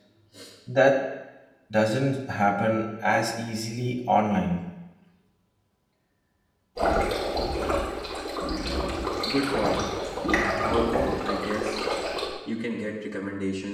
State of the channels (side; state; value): both; identical; correlation 1.00